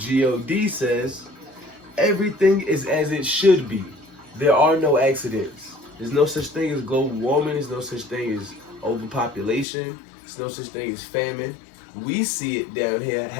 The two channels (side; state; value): right; drops out; at 9.7 s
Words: God says everything is as it should be. There are no accidents. There's no such thing as global warming. There's no such thing as overpopulation. There's no such thing as famine. We see it down here